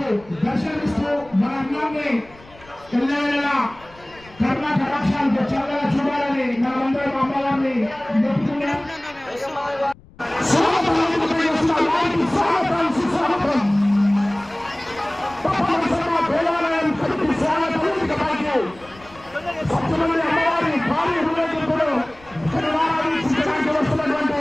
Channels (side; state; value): left; noise; rumble, 25 dB below the sound